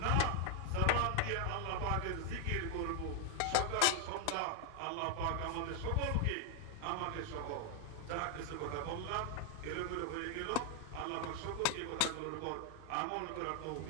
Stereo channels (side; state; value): both; different; correlation 0.00